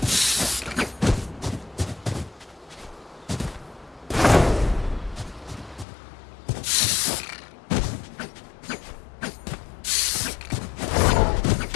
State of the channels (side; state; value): right; drops out; at 5.9 s